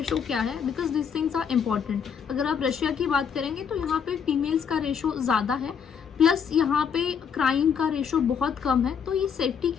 क्या है, because this things are important. अगर आप रशिया की बात करेंगे तो यहाँ पे फीमेल्स का रेशो ज़्यादा है, प्लस यहाँ पे क्राइम का रेशो बहुत कम है। तो ये सेफ्टी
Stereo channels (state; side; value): quieter; right; 7.1 dB